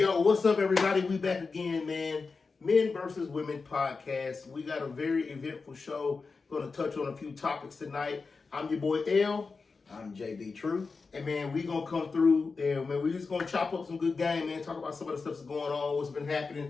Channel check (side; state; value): right; quieter; 4.5 dB